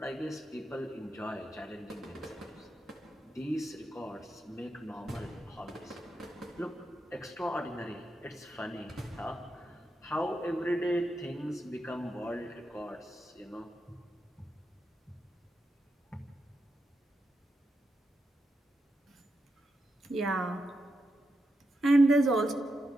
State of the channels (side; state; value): both; normal; correlation 0.86